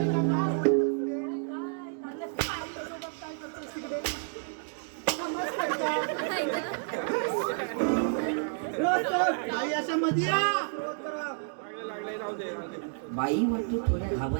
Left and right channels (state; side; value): silent; left; digital silence